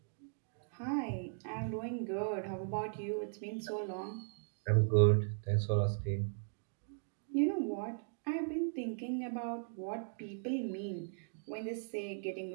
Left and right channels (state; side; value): silent; left; digital silence